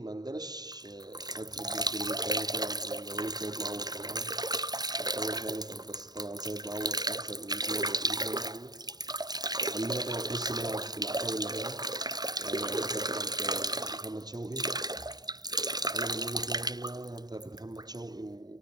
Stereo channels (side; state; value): left; late; 0.19 ms